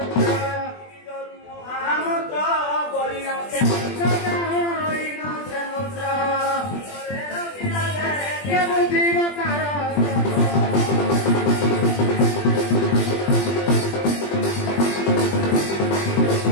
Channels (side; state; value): right; late; 20 ms